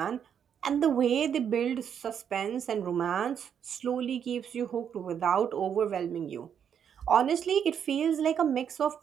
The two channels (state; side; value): quieter; left; 8.2 dB